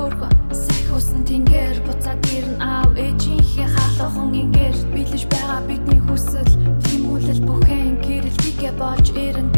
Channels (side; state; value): both; inverted; correlation -1.00